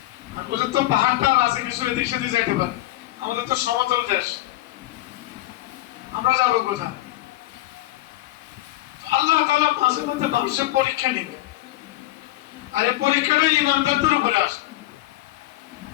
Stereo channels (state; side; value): quieter; right; 16.4 dB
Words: আর ওদের তো পাহাড়টা আছে, কিছু এদিক সেদিক যাইতে পারে। আমাদের তো সমতল দেশ, আমরা যাবো কোথায়? আল্লাহ তাআলা মাঝে মধ্যে মানুষের পরীক্ষা নিবে, আর এই পরীক্ষাটা ঈমানদারদের উপরে আসবে।